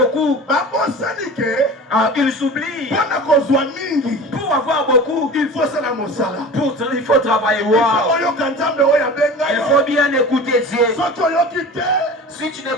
Ils s'oublient. Pour avoir beaucoup, il faut travailler. Il faut bien écouter Dieu. Si tu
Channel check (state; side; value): normal; both; correlation 0.36